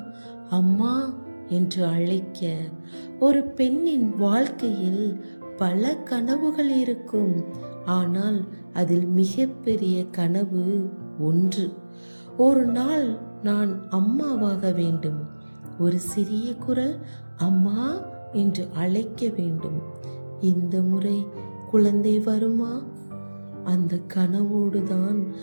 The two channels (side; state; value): both; inverted; correlation -1.00